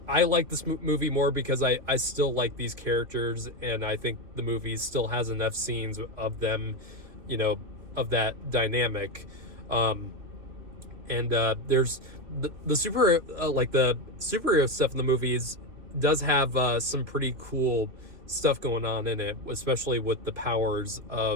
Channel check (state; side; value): late; left; 3.2 ms